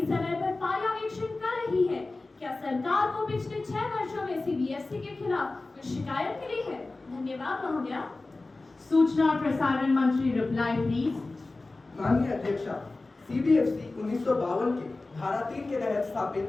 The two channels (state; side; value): quieter; right; 3.3 dB